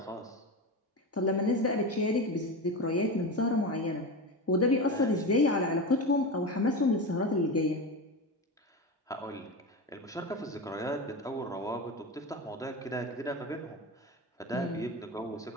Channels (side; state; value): both; normal; correlation 0.22